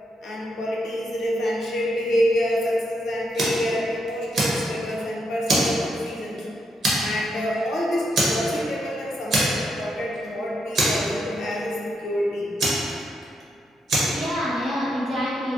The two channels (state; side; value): normal; both; correlation 0.79